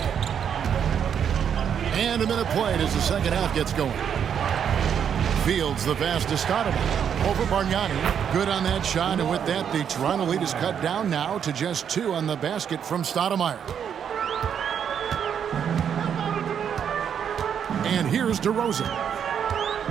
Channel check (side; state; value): left; quieter; 8.2 dB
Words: And a minute played as the second half gets going. Fields, the pass to Stoudemire. Over Bargnani. Good on that shot, and with that, the Toronto lead is cut down now to just 2 on the basket from Stoudemire. And here's DeRozan.